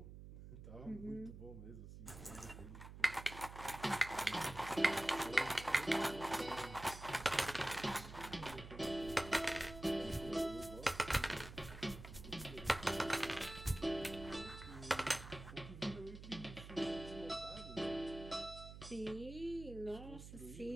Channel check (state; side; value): noise; right; hum, 12 dB below the sound